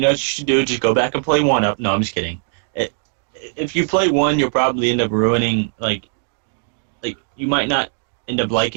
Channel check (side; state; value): left; silent; digital silence